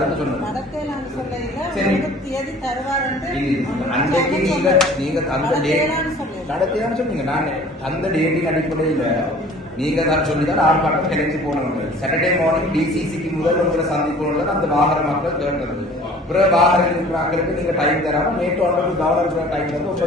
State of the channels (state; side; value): normal; both; correlation 0.48